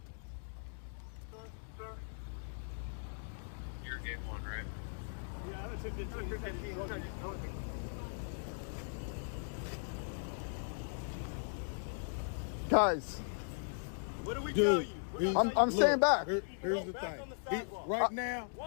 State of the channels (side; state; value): right; silent; digital silence